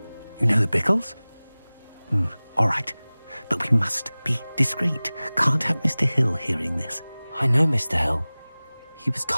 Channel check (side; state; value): both; inverted; correlation -0.99